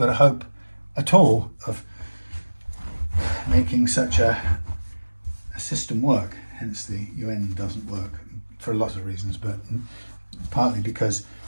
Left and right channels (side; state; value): both; inverted; correlation -1.00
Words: a hope at all of making such a system work. Hence the UN doesn't work for lots of reasons, but partly because